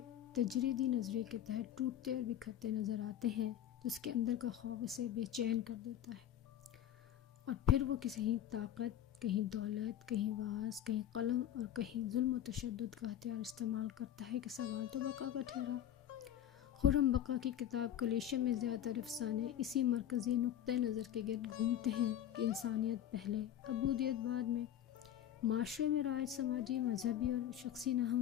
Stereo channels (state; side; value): quieter; right; 10.9 dB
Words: तजरीदी नज़रिए के तहत टूटते और बिखरते नज़र आते हैं तो उसके अंदर का खौफ उसे बेचैन कर देता है। और फिर वो कहीं ताकत, कहीं दौलत, कहीं वास, कहीं कलम और कहीं जुल्म व तशद्दुद का हथियार इस्तेमाल करता है कि सवाल तो बका का ठहरा। खुर्रम बका की किताब कलीशे में ज़्यादातर अफसाने इसी मरकज़ी नुक्ते नज़र के गिर्द घूमते हैं कि इंसानियत पहले, अबूदियत बाद में। माशरे में राज समाजी, मजहबी और शख्सी